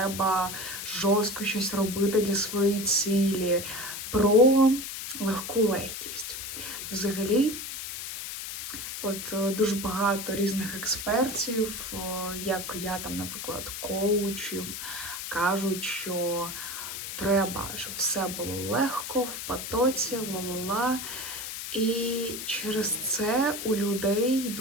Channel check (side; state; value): left; noise; hiss, 7 dB below the sound